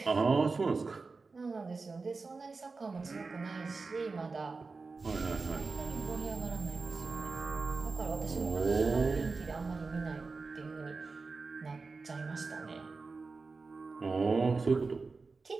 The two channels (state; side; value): quieter; left; 4.1 dB